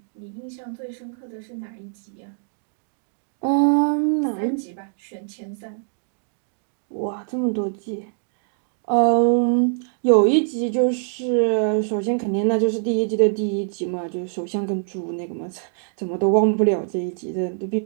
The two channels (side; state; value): left; silent; digital silence